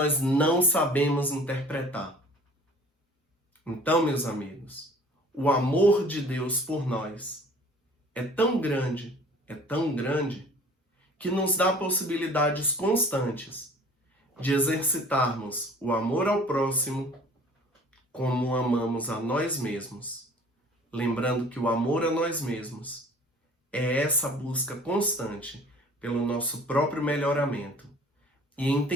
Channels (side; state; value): both; normal; correlation 0.49